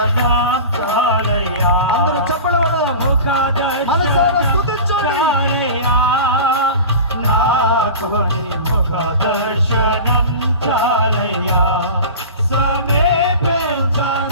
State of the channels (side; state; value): both; inverted; correlation -0.33